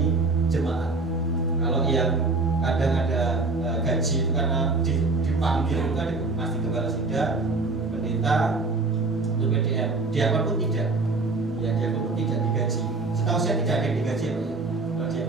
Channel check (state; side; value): quieter; left; 3.6 dB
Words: jemaat. Kalau yang kadang ada gaji itu karena dipanggil itu kan pasti kepala sidang, pendeta, untuk PDM, diakon pun tidak. Ya, diakon pun tidak digaji. Setahu saya tidak ada yang digaji ya, Pak ya. Kalau